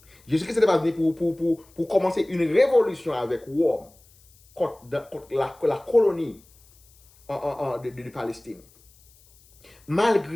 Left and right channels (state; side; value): noise; left; hiss, 29 dB below the sound